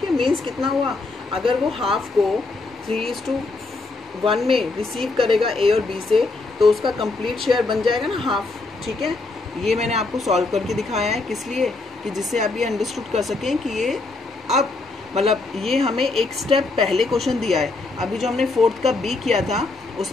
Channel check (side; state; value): right; quieter; 3.5 dB